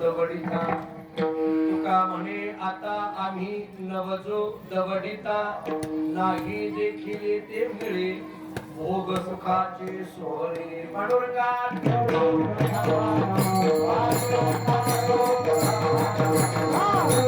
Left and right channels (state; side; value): identical; both; correlation 1.00